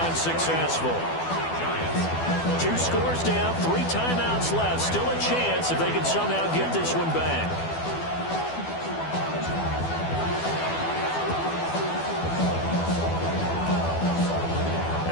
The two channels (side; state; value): right; late; 12 ms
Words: unsuccessful. 2 scores down, 3 timeouts left. Still a chance if they can somehow get this one back.